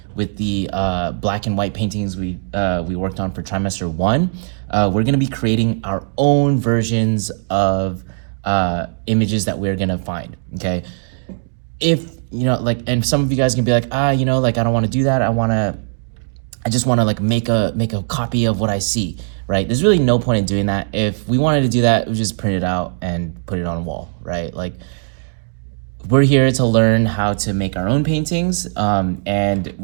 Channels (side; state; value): left; silent; 67 dB below the other